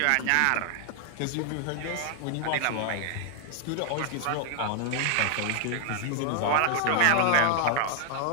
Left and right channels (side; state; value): both; different; correlation 0.00